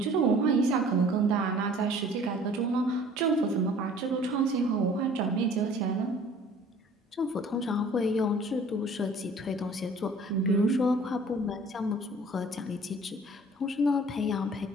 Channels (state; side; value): normal; both; correlation 0.50